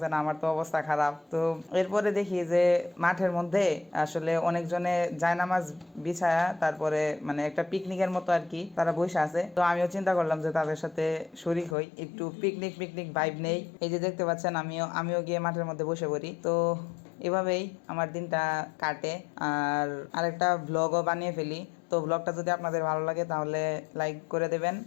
আমার তো অবস্থা খারাপ। তো এরপরে দেখি যে মাঠের মধ্যে আসলে অনেকজনে জায়নামাজ বিছায়া, তারপরে মানে একটা পিকনিকের মতো আর কি তারা বসে আছে। তো আমিও চিন্তা করলাম যে তাদের সাথে শরিক হই, একটু পিকনিক পিকনিক ভাইব নেই। এই যে দেখতে পাচ্ছেন আমিও গিয়ে মাঠের মধ্যে বসে পড়ি। তো এভাবেই আমার দিনটা কাটে, আর আরেকটা ভ্লগও বানিয়ে ফেলি। তো ব্লগটা যদি আপনাদের ভালো লাগে তাহলে লাইক করে দেবেন,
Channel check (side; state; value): right; drops out; at 11.8 s